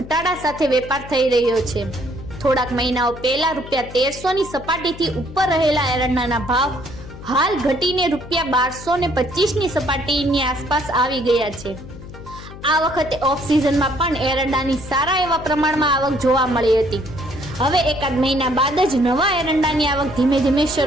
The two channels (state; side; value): noise; left; hum, 14 dB below the sound